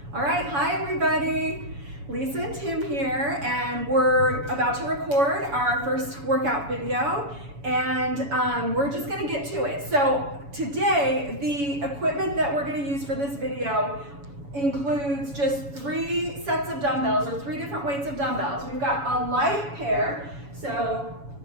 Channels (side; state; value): left; late; 7.1 ms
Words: All right, hi everybody. Lisa and Tim here, and we're about to record our first workout video, and we're just gonna get to it. So today, the equipment that we're gonna use for this video includes just 3 sets of dumbbells, or 3 different weights of dumbbells. We've got a light pair, so